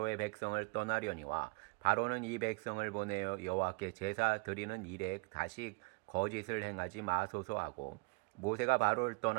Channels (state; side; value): quieter; left; 32.1 dB